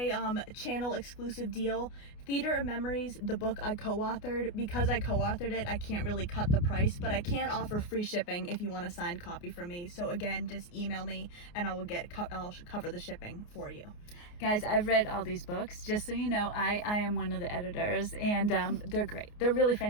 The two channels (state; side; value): late; right; 29 ms